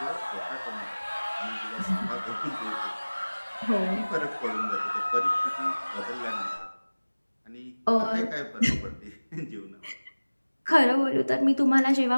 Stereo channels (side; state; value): both; inverted; correlation -1.00